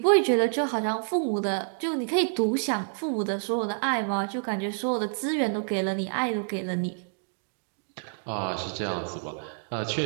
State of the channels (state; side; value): silent; left; 59 dB below the other